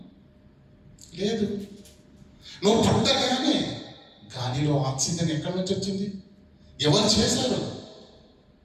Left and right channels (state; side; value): identical; both; correlation 1.00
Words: లేదు. నువ్వు పుట్టగానే గాలిలో ఆక్సిజన్ ఎక్కడి నుంచి వచ్చింది? ఎవరు చేశారు?